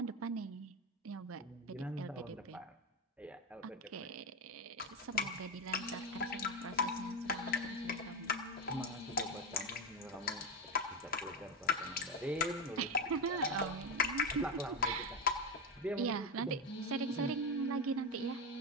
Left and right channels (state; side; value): normal; both; correlation 0.14